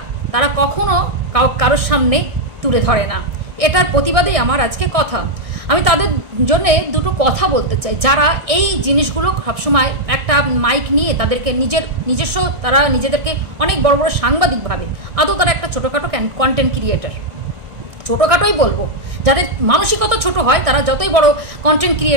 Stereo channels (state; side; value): late; left; 1.5 ms